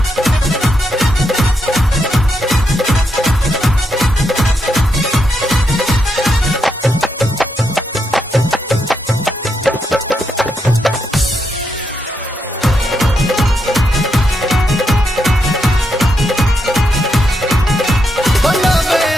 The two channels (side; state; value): both; normal; correlation 0.81